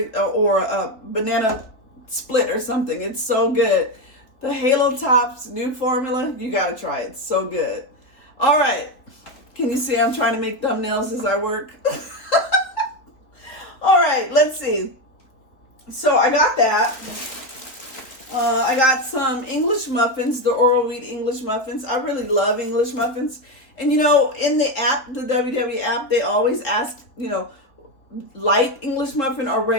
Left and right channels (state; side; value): late; right; 3.7 ms